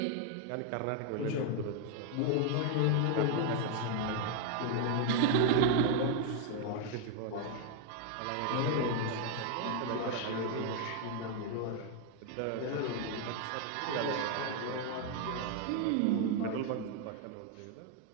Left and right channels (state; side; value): different; both; correlation 0.01